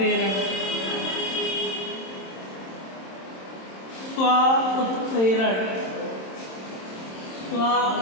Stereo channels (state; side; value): late; right; 26 ms